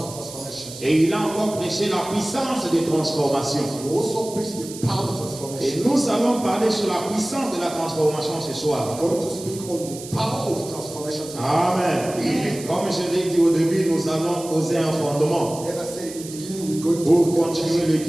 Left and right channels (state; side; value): noise; right; hiss, 14 dB below the sound